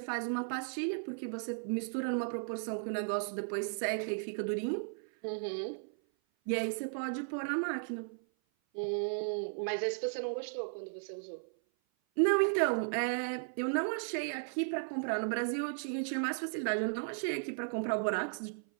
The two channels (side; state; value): left; silent; 54 dB below the other